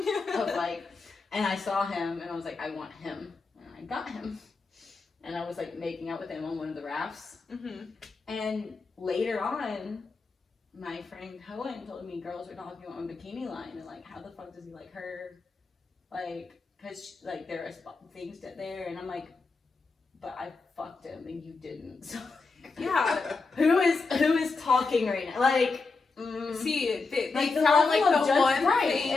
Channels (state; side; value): quieter; right; 4.1 dB